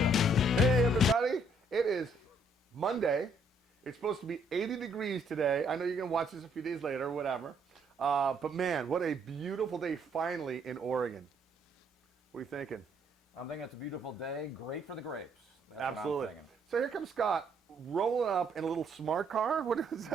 Hey everybody, it is Monday. It's supposed to be 80 degrees today. I know you're going to watch this a few days later or whatever. But man, what a beautiful day finally in Oregon. What are you thinking? I'm thinking it's a beautiful day, great for the grapes. That's Absolutely. what I'm thinking. So here comes Scott rolling up in a little smart car. What is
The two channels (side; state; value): both; normal; correlation 0.68